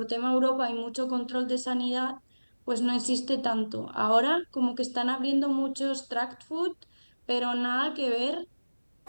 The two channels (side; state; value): both; inverted; correlation -1.00